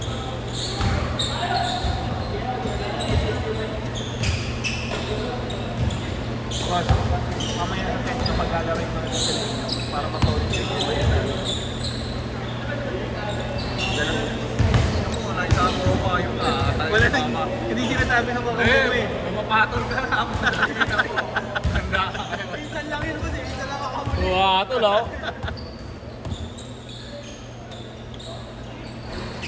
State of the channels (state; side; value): identical; both; correlation 1.00